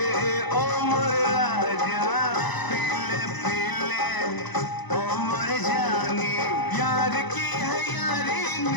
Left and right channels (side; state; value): right; late; 1.0 ms